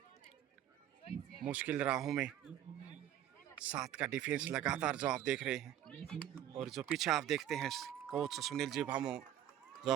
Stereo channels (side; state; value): left; quieter; 11.4 dB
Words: मुश्किल राहों में। 7 का डिफेंस लगातार जो आप देख रहे हैं, और जो पीछे आप देखते हैं कोच सुनील जी भामू जो